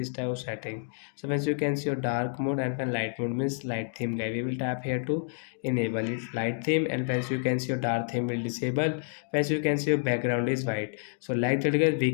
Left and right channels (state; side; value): silent; right; digital silence